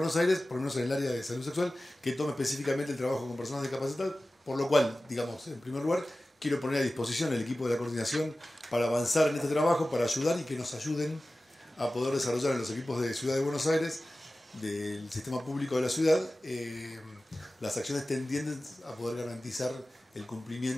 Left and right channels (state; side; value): normal; both; correlation 0.96